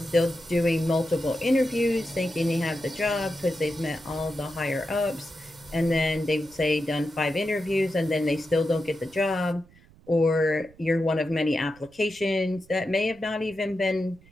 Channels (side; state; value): right; noise; rumble, 26 dB below the sound